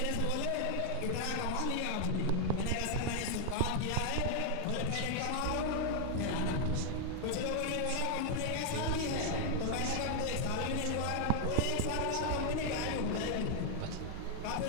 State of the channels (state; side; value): different; both; correlation 0.00